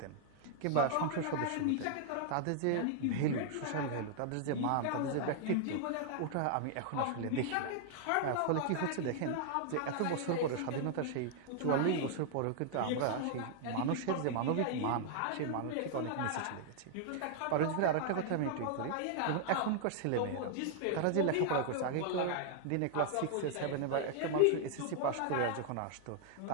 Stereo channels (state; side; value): different; both; correlation -0.01